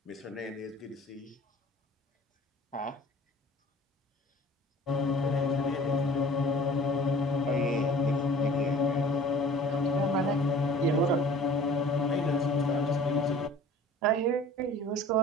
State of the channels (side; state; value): both; normal; correlation 0.47